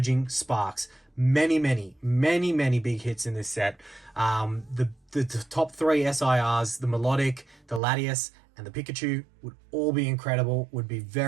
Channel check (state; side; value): drops out; left; at 7.8 s